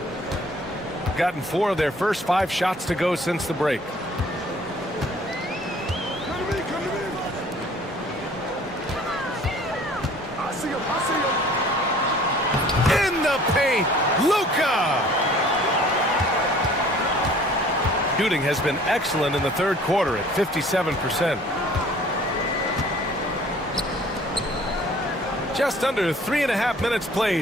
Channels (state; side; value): normal; both; correlation 0.52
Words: Gotten 4 of their first 5 shots to go since the break. In the paint, Luka. Shooting has been excellent in the third quarter at 57%. Just under 3.5 minutes